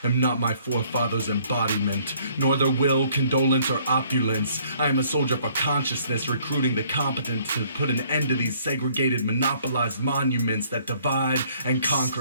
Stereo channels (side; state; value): both; inverted; correlation -0.61